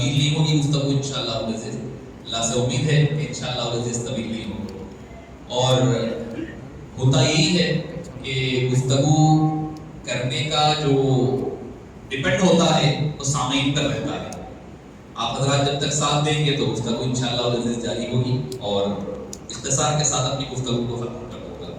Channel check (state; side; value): identical; both; correlation 1.00